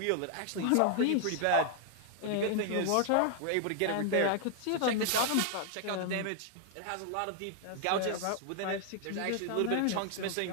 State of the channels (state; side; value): different; both; correlation 0.00